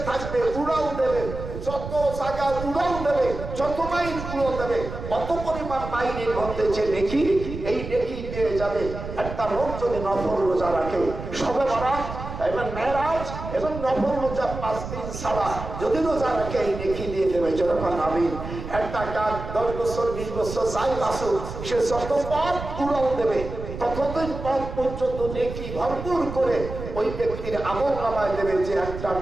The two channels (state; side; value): noise; right; rumble, 9 dB below the sound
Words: থাকবে উড়াল দেবে যত জায়গা উড়াল দেবে যত মাইল উড়াল দেবে অত পরিমাণ মাইলের মধ্যে যে নেকি এই নেকি পেয়ে যাবে একটা লোক যদি নফল রোজা রাখে সবে বরাত এবং মেরাজ এবং নফল রোজা 5 দিন ছাড়া যদি রোজা রাখে এই নেকি দিয়ে দেবে যখন আমিন একটা কাজ 10 বছর 20 বছর যাই বাসুক সে যত পথ উড়াল দেবে ততদিন পথ পর্যন্ত নেকি ভরপুর করে ওই ব্যক্তির আমল নামায় দেবে যে একটা